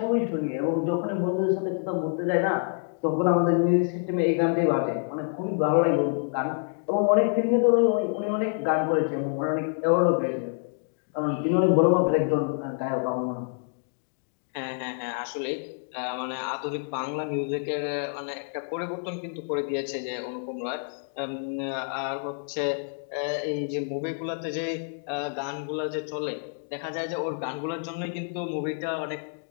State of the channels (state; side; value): silent; right; 60 dB below the other